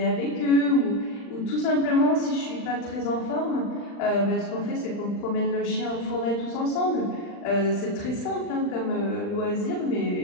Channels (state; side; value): late; right; 39 ms